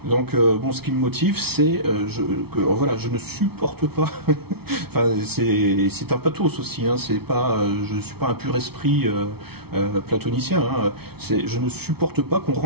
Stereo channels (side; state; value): left; late; 0.96 ms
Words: Donc, ce qui me motive, c'est je ne supporte pas. Enfin, c'est un pathos aussi. Je ne suis pas un pur esprit platonicien. Je ne supporte pas qu'on